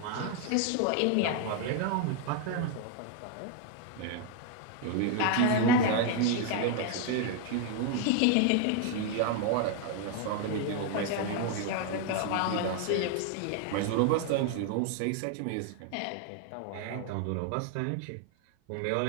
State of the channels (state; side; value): different; both; correlation 0.01